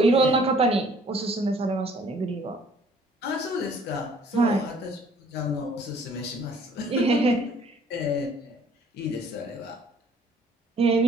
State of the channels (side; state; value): both; normal; correlation 0.58